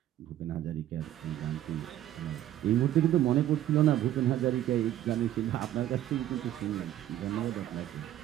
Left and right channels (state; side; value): quieter; left; 12.6 dB